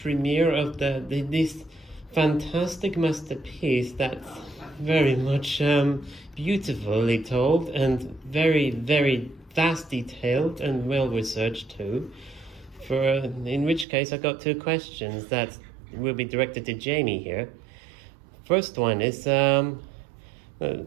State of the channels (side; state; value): left; drops out; at 13.9 s